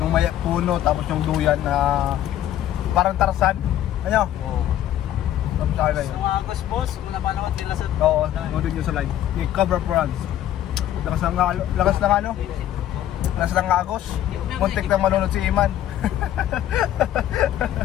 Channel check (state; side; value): quieter; right; 12.0 dB